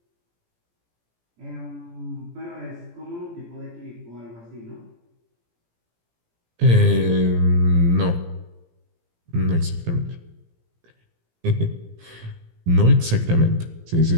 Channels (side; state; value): left; late; 17 ms